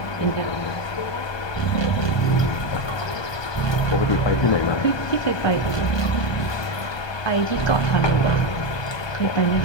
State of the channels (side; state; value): right; late; 1.2 ms